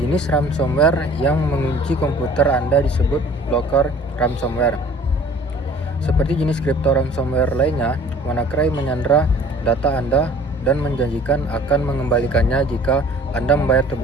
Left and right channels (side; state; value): both; normal; correlation 0.50